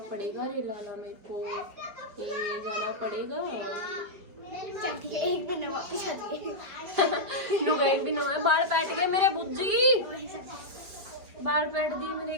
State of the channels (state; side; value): late; left; 4.9 ms